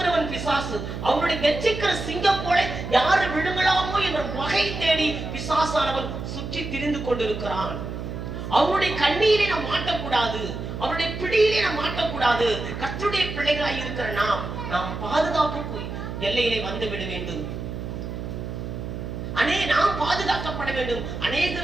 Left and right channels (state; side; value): noise; right; hum, 6 dB below the sound